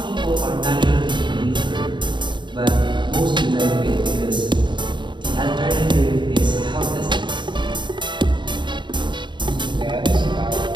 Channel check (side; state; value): left; late; 0.23 ms